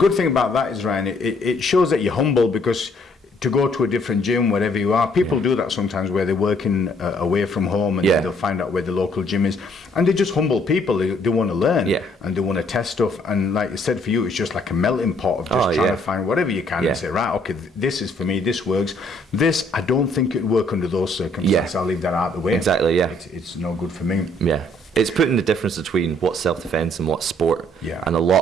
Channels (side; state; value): both; normal; correlation 0.65